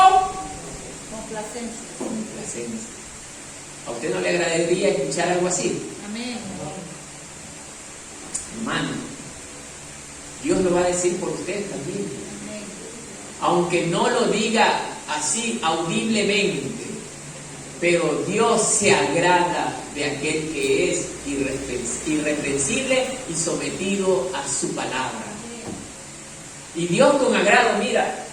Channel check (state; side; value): identical; both; correlation 1.00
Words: complacencia. ¿A usted no le agradaría escuchar algo así? Amén. Hermano, Dios lo va a decir por usted también. Amén. Aunque no lo diga así audiblemente, pero Dios se agrada de aquel que es irreprensible y sometido a su palabra. Y Dios con agrado, mira,